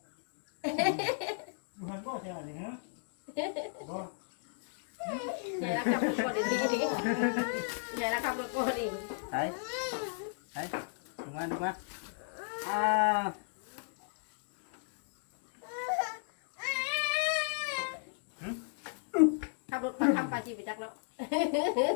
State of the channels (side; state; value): right; silent; digital silence